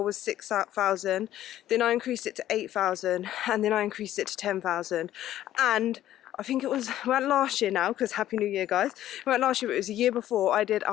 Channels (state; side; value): quieter; right; 12.8 dB